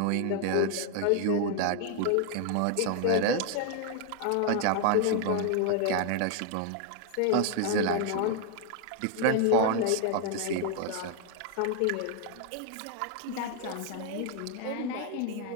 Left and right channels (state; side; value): different; both; correlation 0.00